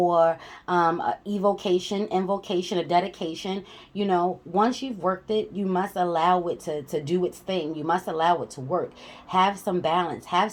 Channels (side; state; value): both; identical; correlation 1.00